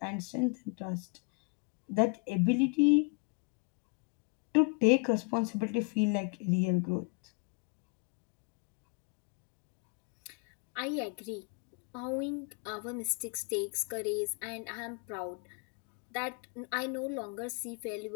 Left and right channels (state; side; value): quieter; right; 32.7 dB